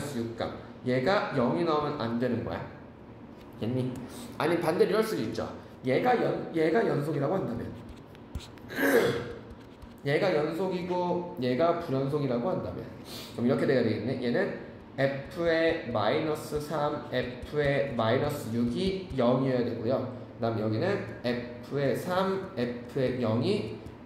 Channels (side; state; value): both; identical; correlation 1.00